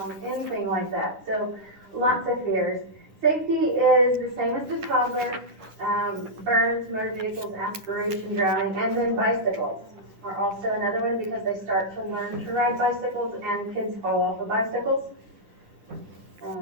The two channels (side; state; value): left; late; 10 ms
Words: Anything like that. So, lots of fears. Safety is the same as the toddler. Burns, motor vehicles, aspiration, drowning, and then bicycles are also another one because they start to learn to ride bicycles and kids fall off of bicycles.